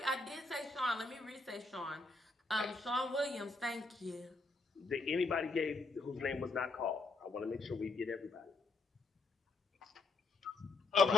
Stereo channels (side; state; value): right; quieter; 3.5 dB